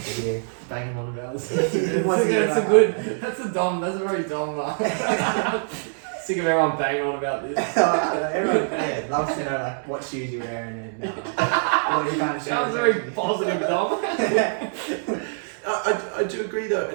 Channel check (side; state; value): left; silent; digital silence